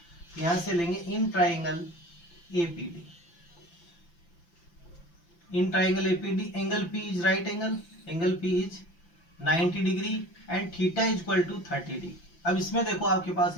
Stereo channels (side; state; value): right; late; 5.9 ms